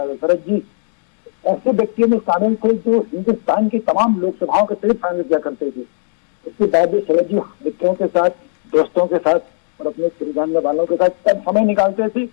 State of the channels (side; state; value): right; silent; digital silence